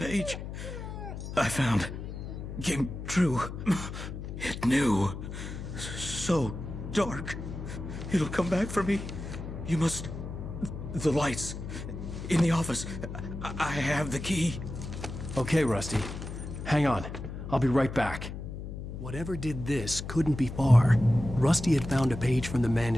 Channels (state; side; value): noise; left; hum, 8 dB below the sound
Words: I found. Came true. It knew. So dark. It'll come back for me. You must... The lights. In the office. I have the key. Okay, Rusty. Hang on. I'll be right back. Whatever did this couldn't be far. Rusty had found a page from the